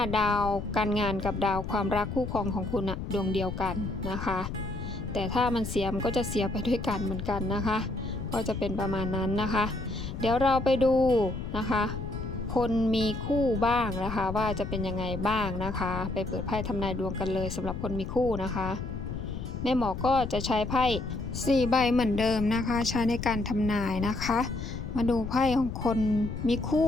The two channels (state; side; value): noise; left; rumble, 6 dB below the sound